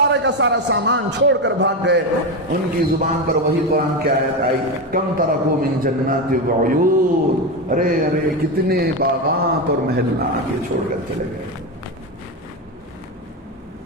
کا سارا سامان چھوڑ کر بھاگ گئے، ان کی زبان پر وہی قرآن کی آیت آئی، کم ترکو من جنات و عیون. ارے کتنے باغات اور محلات یہ چھوڑ کر چلے گئے.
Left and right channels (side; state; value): both; normal; correlation 0.14